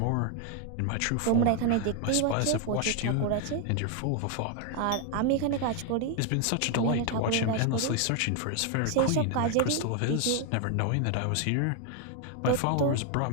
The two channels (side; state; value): both; different; correlation 0.00